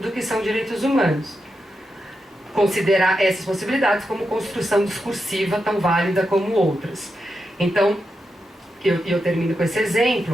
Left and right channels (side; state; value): both; normal; correlation 0.87